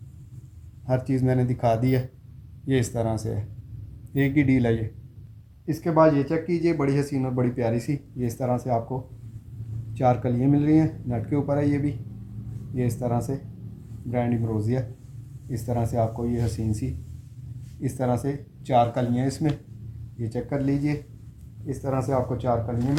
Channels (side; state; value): both; identical; correlation 1.00